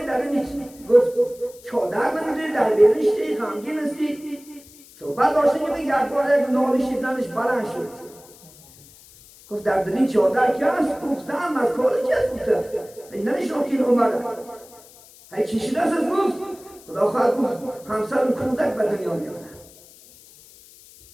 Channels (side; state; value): left; noise; hiss, 23 dB below the sound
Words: در این؟ گفت چادر نمیدونی در بیرونشتی غمگین هستی. صحبت داشته که یک بار یک نالشی زنش بلند شد. گفت در این چادر کی است؟ گفت زن از کار کی است؟ گفت نمیشنم که این اومده. هی چی شده است؟ گفت خدا خواهد گفت همسرم کودک به دنیا میاد.